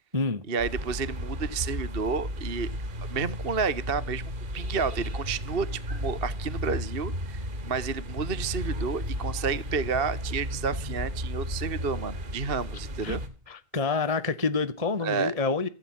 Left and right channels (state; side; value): late; left; 2.6 ms